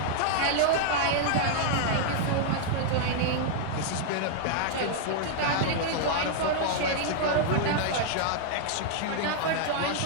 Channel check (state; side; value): different; both; correlation -0.01